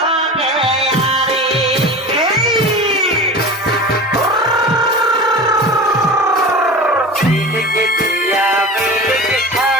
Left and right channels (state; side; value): normal; both; correlation 0.33